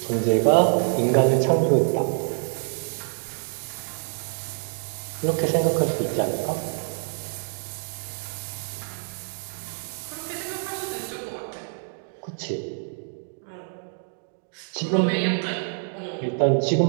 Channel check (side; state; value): left; silent; digital silence